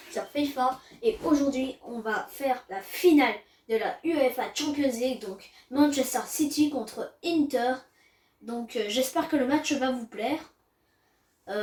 sur FIFA et aujourd'hui on va faire la finale de la UEFA Champions League, donc Manchester City contre Inter. Donc j'espère que le match va vous plaire.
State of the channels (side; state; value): both; identical; correlation 1.00